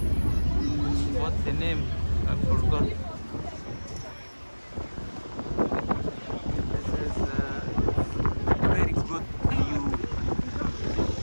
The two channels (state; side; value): inverted; both; correlation -1.00